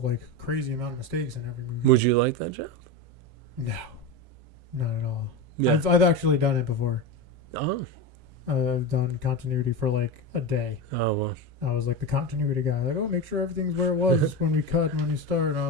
like crazy amount of mistakes in every movie. Would you like that job? No, not at all. Yeah. I've actually done it before. Oh. I've done continuity for like a day. Oh, well. I was like the continuity guy. Like, oh, make sure everything's where it was when we cut and when we start. And I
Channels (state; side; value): late; left; 7.5 ms